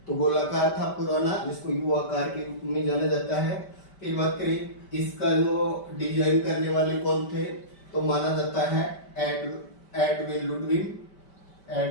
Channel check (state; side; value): late; right; 5.1 ms